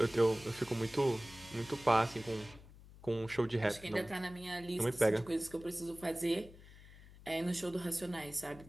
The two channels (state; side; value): noise; left; hum, 20 dB below the sound